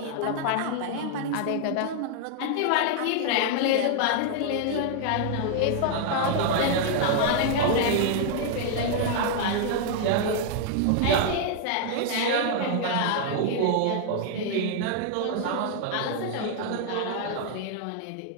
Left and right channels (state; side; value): different; both; correlation 0.00